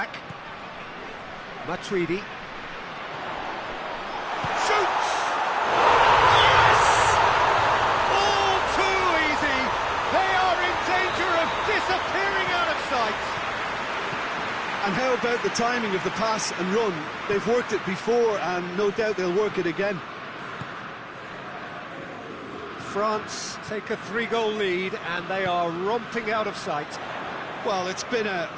Matuidi. Shoots! Yes! All too easy. They are in danger of disappearing out of sight. And how about the timing of the pass and run? They've worked it before and no doubt they'll work it again. France take a 3-goal lead and they are romping out of sight. Well, it's been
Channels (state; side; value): identical; both; correlation 1.00